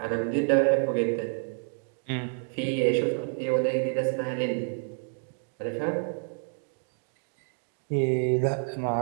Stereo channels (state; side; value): silent; left; 59 dB below the other